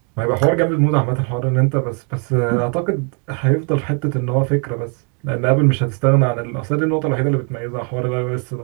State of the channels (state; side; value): quieter; left; 39.0 dB